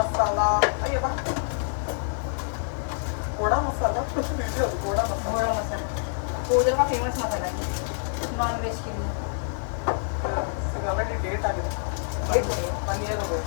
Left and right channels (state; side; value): silent; right; digital silence